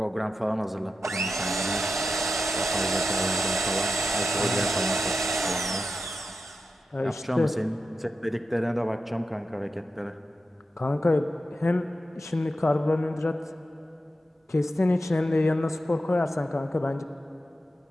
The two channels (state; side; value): normal; both; correlation 0.89